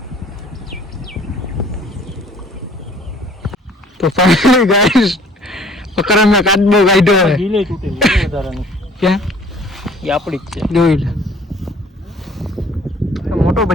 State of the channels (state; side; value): normal; both; correlation 0.54